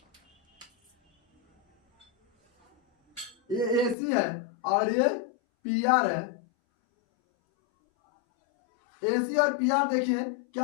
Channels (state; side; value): drops out; right; at 4.0 s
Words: ये एसी है और ये पी आर है। एसी और पी आर देखिए